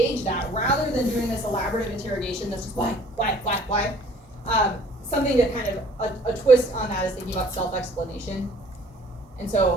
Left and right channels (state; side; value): normal; both; correlation 0.55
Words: that rather than doing this elaborative interrogation that's just why? Something that kind of a twist on that is thinking about self-explanation. And